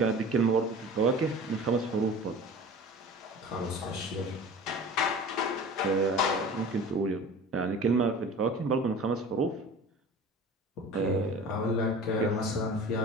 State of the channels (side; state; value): both; normal; correlation 0.39